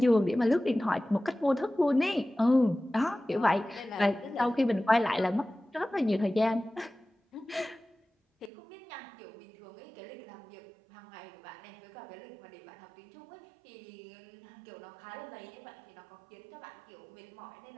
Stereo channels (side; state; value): left; drops out; at 8.5 s